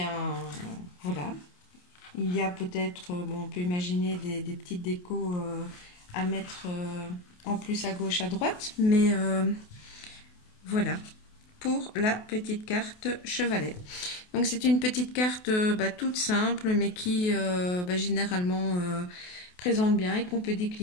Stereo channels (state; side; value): late; right; 28 ms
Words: voilà. Il y a peut-être, bon, on peut imaginer des petites décos à mettre en plus à gauche, à droite. Mais voilà pour la petite carte chevalet. Donc c'est une petite carte toute simple, mais qui généralement présente bien et qu'on peut